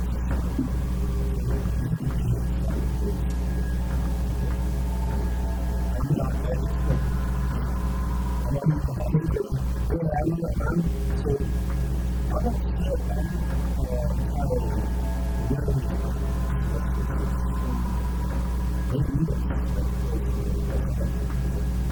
so it's just going to land on the ground. Okay. So do you want to do it inside of his temple? So the I'm not. It's more private, I Yeah. think. Yeah. I'm not, I mean, I'm like, not put the super. lamp in the Yeah, I'm temple not. and then- I'm so okay. I'm not entirely worried about the Celestials here destroying the land. They need us, right? Of course, and we're set up to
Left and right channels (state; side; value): identical; both; correlation 1.00